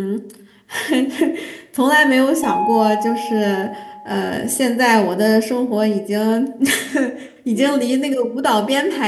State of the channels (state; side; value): identical; both; correlation 1.00